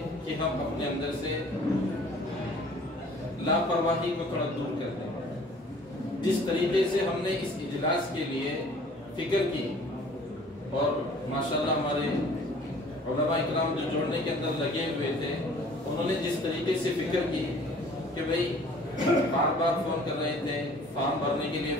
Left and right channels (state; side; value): normal; both; correlation 0.52